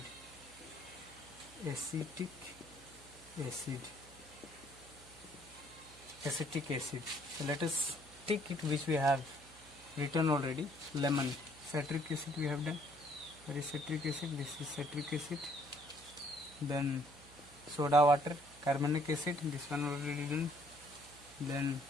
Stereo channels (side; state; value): right; noise; hum, 22 dB below the sound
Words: Acetic acid. So let us take it which we have written already. Lemon, citric acid we have done. There is citric acid, this is citric acid. Then soda water, carbonic acid, this one already done. Then